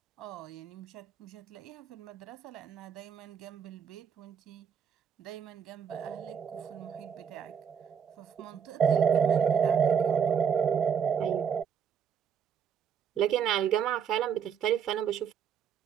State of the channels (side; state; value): left; quieter; 7.5 dB